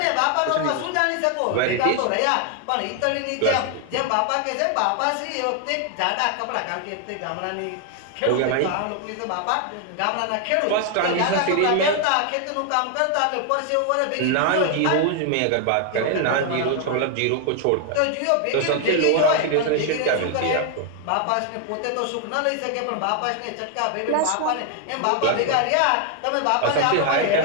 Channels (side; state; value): both; different; correlation 0.00